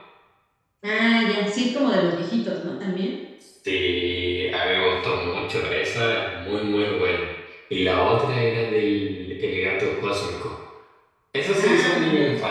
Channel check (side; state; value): both; identical; correlation 1.00